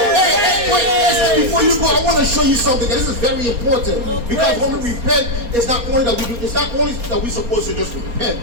Hey, wait, Esther, before before you go, I want to show you something, and this is very important, because when we repent, it's not only that we're supposed to just repent.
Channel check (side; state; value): left; late; 4.3 ms